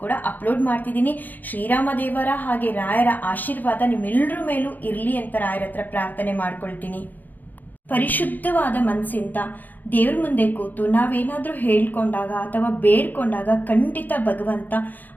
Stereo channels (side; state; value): right; late; 0.085 ms